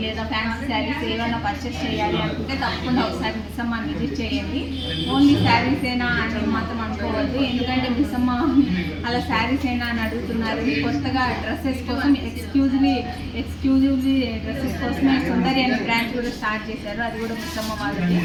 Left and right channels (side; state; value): both; identical; correlation 1.00